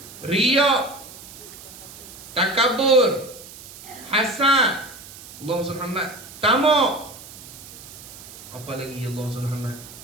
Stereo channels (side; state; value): right; noise; hiss, 16 dB below the sound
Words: Riya, takabur, hasad, Allahumma salli Muhammad, tamak. Apa lagi Allahumma salli Muhammad?